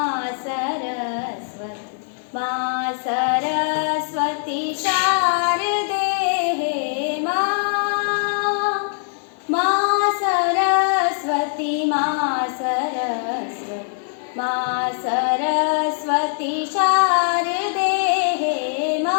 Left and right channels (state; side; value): silent; right; digital silence